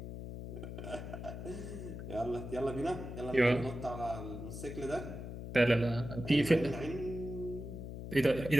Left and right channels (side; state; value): left; noise; hum, 8 dB below the sound